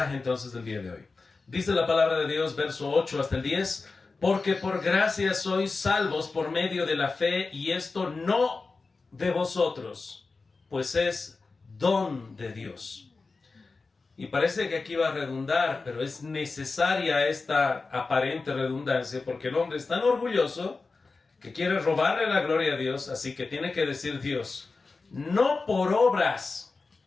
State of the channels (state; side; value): quieter; right; 4.0 dB